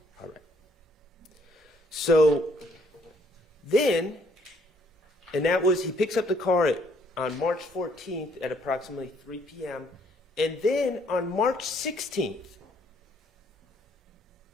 All right. So then, and that was, he picks up the car on March 14th at approximately 3 p.m. And then on March 16th,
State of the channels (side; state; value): both; normal; correlation 0.66